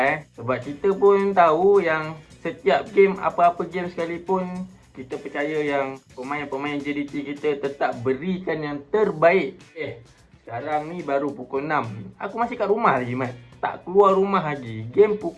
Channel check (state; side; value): identical; both; correlation 1.00